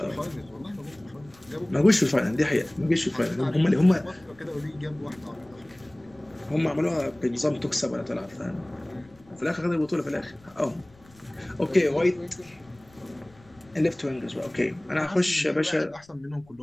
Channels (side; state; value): left; noise; rumble, 27 dB below the sound